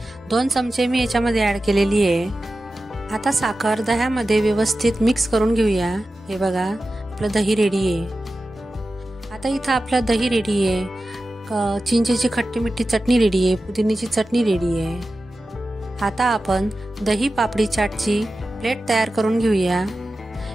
2 चमचे मी याच्यामध्ये ॲड केलेली आहे. आता साखर दह्यामध्ये व्यवस्थित मिक्स करून घेऊया. हे बघा आपलं दही रेडी आहे. आता इथं आपलं दही रेडी आहे. चिंचेची खट्टी मिठी चटणी रेडी आहे. पुदिन्याची चटणी रेडी आहे. आता आपण दही पापडी चाटची प्लेट तयार करून घेऊया.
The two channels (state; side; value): normal; both; correlation 0.94